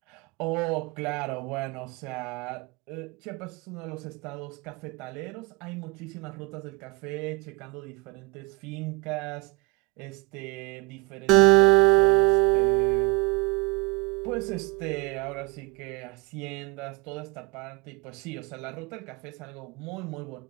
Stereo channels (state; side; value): quieter; left; 24.3 dB